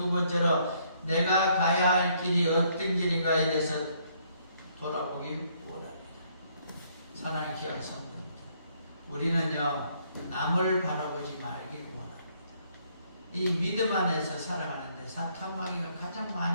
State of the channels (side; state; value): both; inverted; correlation -0.68